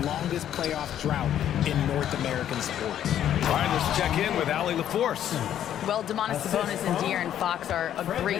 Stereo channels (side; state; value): right; quieter; 10.7 dB